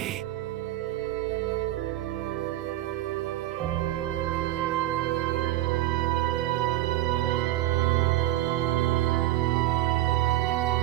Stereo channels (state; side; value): quieter; left; 14.7 dB